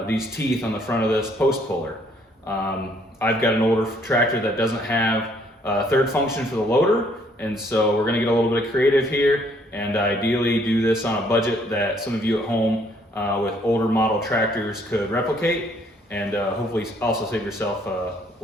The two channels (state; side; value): normal; both; correlation 0.65